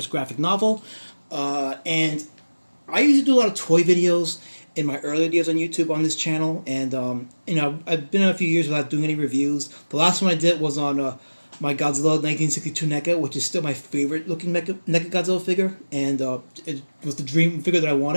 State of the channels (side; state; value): both; inverted; correlation -1.00